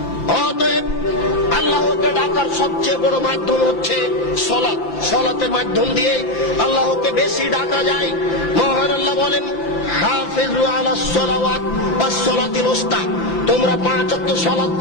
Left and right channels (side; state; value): right; late; 5.9 ms